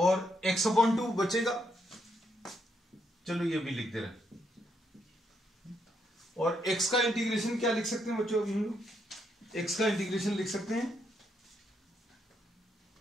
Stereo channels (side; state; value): both; normal; correlation 0.77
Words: x/2 बचेगा। चलो ये भी लिख दे रहे हैं। और x का इंटीग्रेशन क्या लिख सकते हैं बच्चों, अभी हम लोग x का इंटीग्रेशन लिख सकते हैं